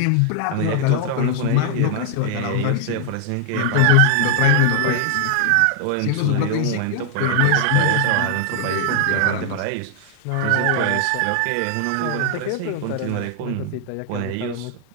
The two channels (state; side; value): different; both; correlation -0.01